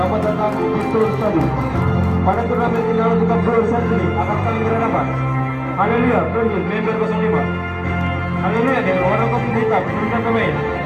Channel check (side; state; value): both; identical; correlation 1.00